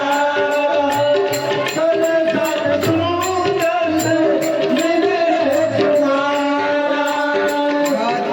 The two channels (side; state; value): both; identical; correlation 1.00